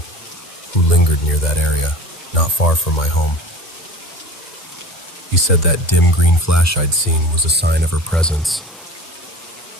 who lingered near that area, not far from my home. He said that dim green flash I'd seen was a sign of her presence,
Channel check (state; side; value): normal; both; correlation 0.39